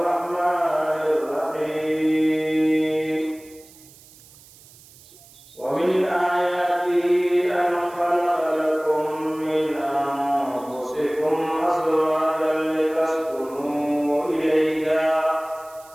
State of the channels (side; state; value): right; noise; hiss, 24 dB below the sound